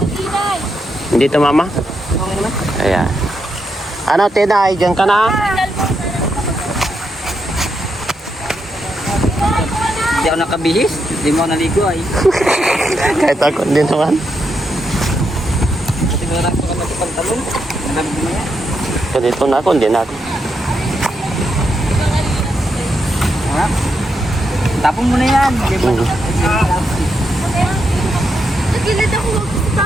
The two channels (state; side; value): normal; both; correlation 0.82